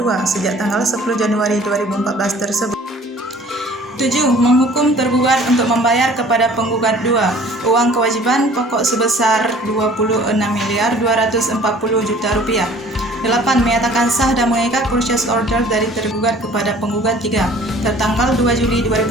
sejak tanggal 10 Januari 2014 tersebut. 7. Menghukum tergugat untuk membayar kepada penggugat 2 uang kewajiban pokok sebesar Rp26.240.000.000. 8. Menyatakan sah dan mengikat purchase order dari tergugat kepada penggugat 3 tertanggal 2 Juli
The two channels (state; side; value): normal; both; correlation 0.51